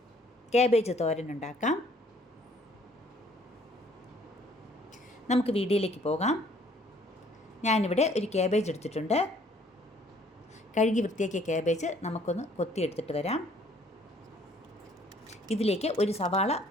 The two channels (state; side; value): normal; both; correlation 0.60